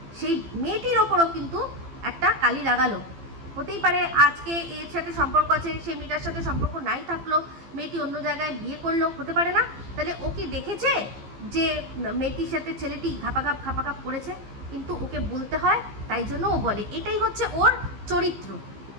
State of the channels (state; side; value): late; left; 15 ms